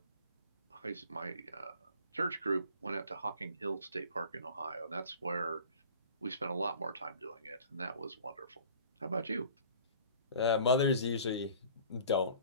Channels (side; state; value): both; inverted; correlation -0.46